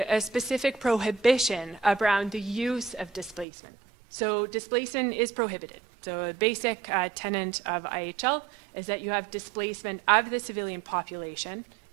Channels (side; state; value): left; drops out; at 3.5 s